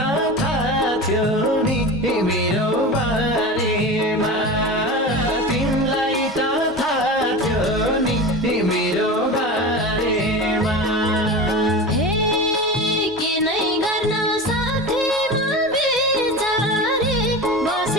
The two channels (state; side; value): normal; both; correlation 0.29